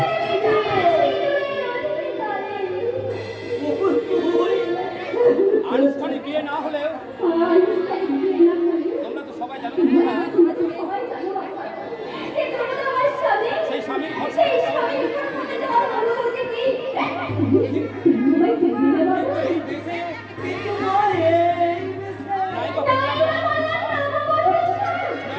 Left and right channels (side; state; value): both; identical; correlation 1.00